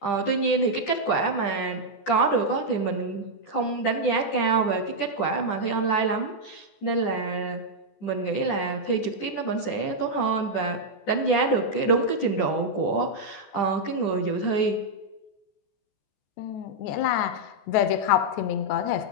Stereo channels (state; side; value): late; right; 14 ms